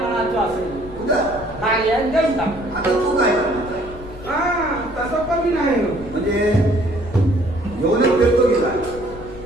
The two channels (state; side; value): noise; left; rumble, 16 dB below the sound